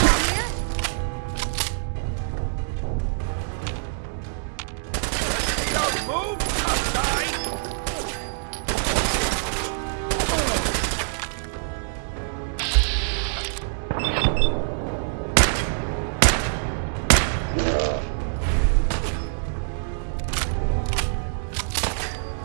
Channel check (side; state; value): left; silent; digital silence